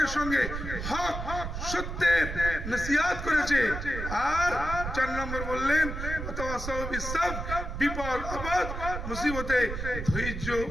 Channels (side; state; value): right; noise; rumble, 6 dB below the sound